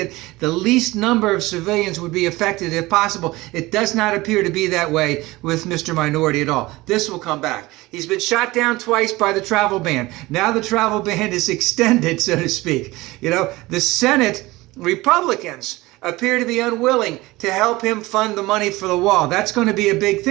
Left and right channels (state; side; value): quieter; left; 20.2 dB